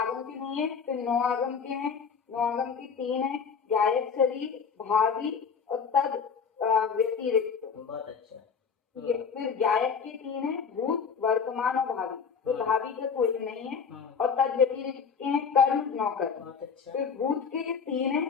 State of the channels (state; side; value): quieter; right; 6.1 dB